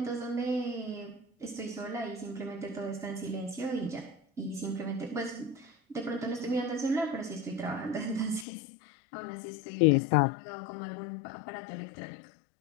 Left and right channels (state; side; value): drops out; right; at 8.5 s